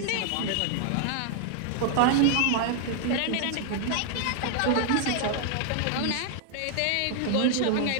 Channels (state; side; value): different; both; correlation 0.00